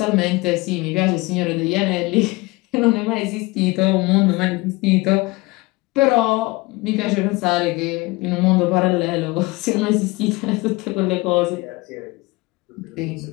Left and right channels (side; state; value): right; quieter; 22.7 dB